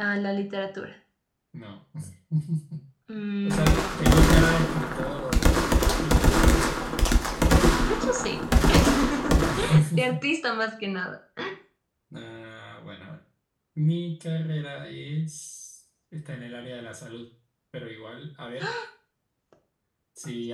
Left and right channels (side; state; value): both; identical; correlation 1.00